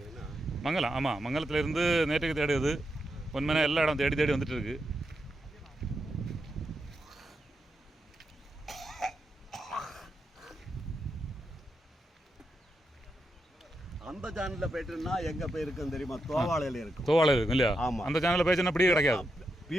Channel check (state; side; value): normal; both; correlation 0.85